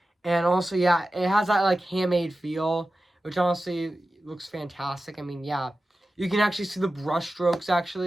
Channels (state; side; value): normal; both; correlation 0.94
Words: and also yeah, it has that like handmade feel, which honestly looks fantastic. I mean, yeah, you can actually see the brush strokes